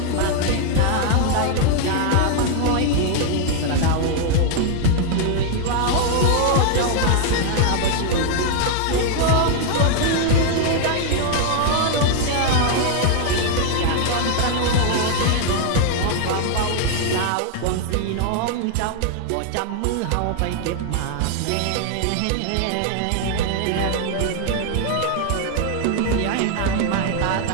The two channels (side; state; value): both; different; correlation 0.00